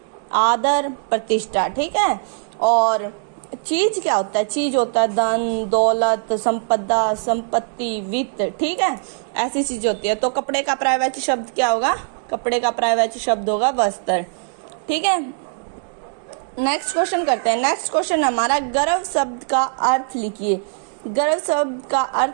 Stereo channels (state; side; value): silent; left; 65 dB below the other